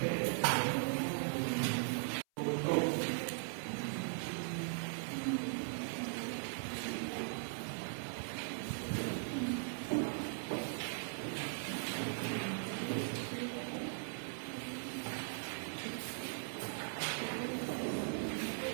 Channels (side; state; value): left; silent; 51 dB below the other